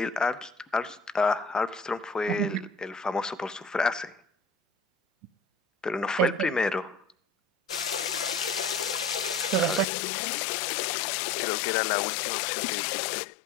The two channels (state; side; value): drops out; right; at 9.9 s